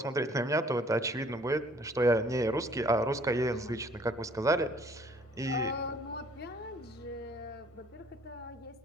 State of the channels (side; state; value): both; normal; correlation 0.57